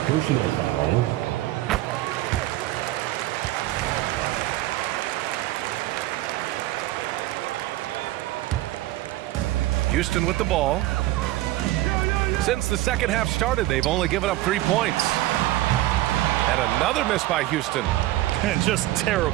personal foul. Houston with the ball. Since the second half started, they've only given up 3 points. And another miss by Houston. And just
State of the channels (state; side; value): quieter; left; 16.4 dB